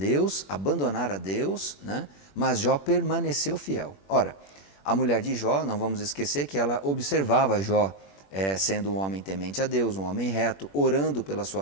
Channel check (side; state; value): right; late; 21 ms